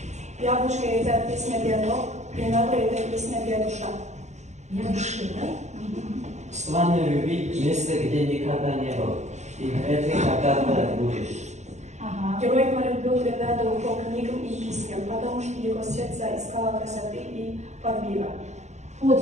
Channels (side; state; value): left; late; 0.33 ms